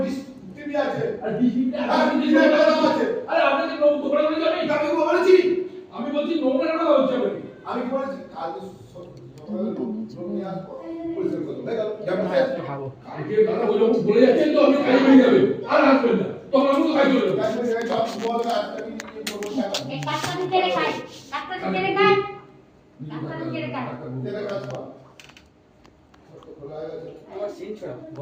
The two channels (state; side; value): identical; both; correlation 1.00